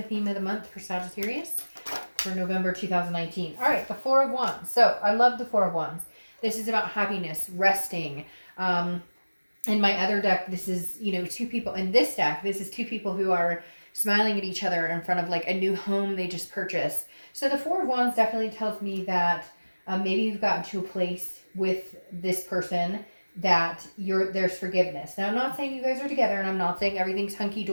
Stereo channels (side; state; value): both; inverted; correlation -1.00